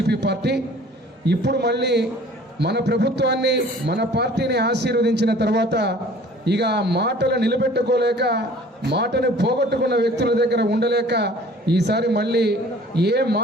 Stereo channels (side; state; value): both; normal; correlation 0.49